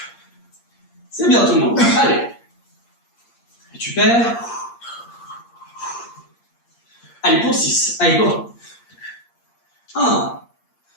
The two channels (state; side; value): late; right; 8.6 ms